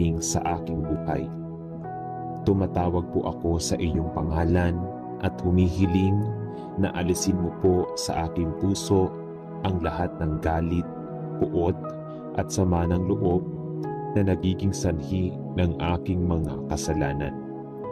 sa aking buhay. Tumatawag po ako sa iyong pangalan at humihiling na alisin mo po sa aking puso ang lahat ng galit, puot at sama ng loob na nagiging sanhi ng aking mga kasalanan.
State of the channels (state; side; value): identical; both; correlation 1.00